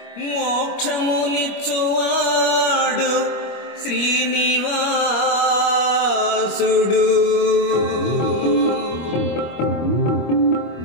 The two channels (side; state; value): right; late; 25 ms